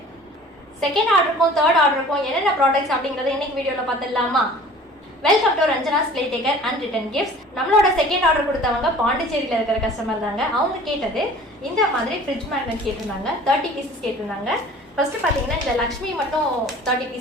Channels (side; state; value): both; normal; correlation 0.46